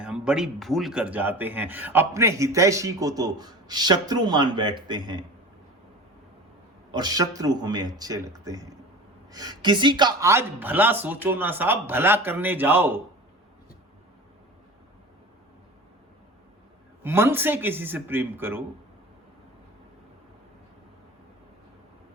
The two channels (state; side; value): normal; both; correlation 0.36